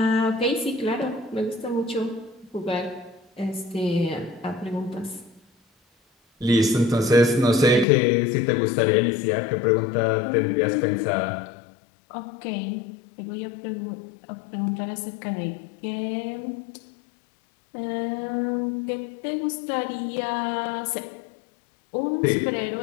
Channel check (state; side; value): drops out; right; at 7.9 s